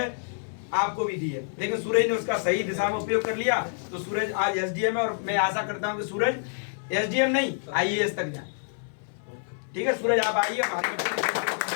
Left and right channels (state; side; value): silent; right; 60 dB below the other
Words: आपको भी दी है, लेकिन सूरज ने उसका सही दिशा में उपयोग कर लिया तो सूरज आज एसडीएम है। और मैं आशा करता हूं कि सूरज एसडीएम नहीं आईएएस तक जाए, ठीक है। सूरज आप आइए, हमारे